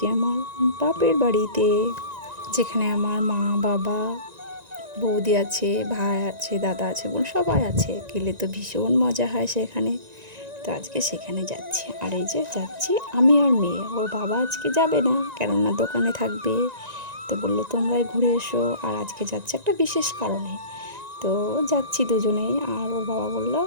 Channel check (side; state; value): left; late; 1.9 ms